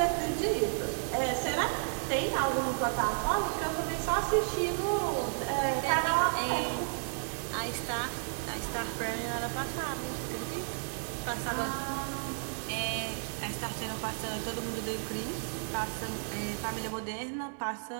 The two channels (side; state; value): left; silent; digital silence